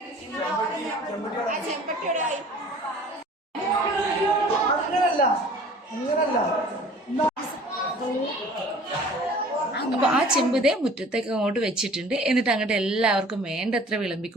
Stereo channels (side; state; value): both; normal; correlation 0.48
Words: അപ്പൊ ആ ചെമ്പുതേ മുറ്റത്തേക്ക് അങ്ങോട്ട് വെച്ചിട്ടുണ്ട്. എന്നിട്ട് അങ്ങോട്ട് എല്ലാവർക്കും വേണ്ടത്ര